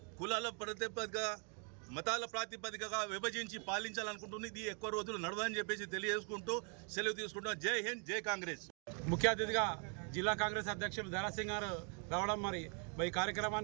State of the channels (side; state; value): left; quieter; 38.3 dB